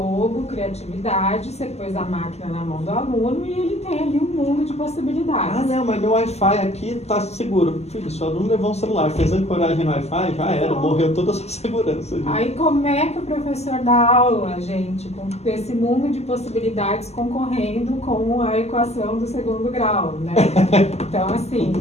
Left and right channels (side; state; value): right; late; 0.31 ms